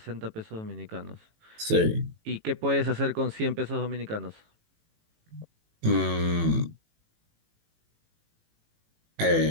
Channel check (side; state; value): left; late; 18 ms